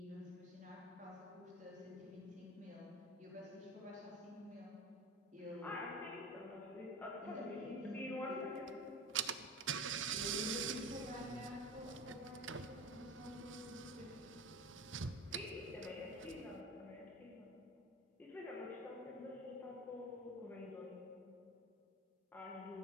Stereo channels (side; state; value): both; normal; correlation 0.32